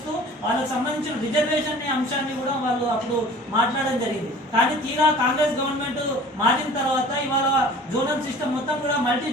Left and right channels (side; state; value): both; normal; correlation 0.45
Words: వాళ్ళకు సంబంధించిన రిజర్వేషన్ అంశాన్ని కూడా వాళ్ళు అప్పుడు మాట్లాడడం జరిగింది. కానీ తీరా కాంగ్రెస్ గవర్నమెంట్ మారిన తర్వాత ఇవాళ జోనల్ సిస్టమ్ మొత్తం కూడా మల్టీ